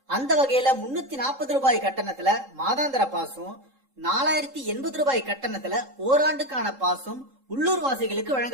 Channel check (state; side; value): late; left; 3.7 ms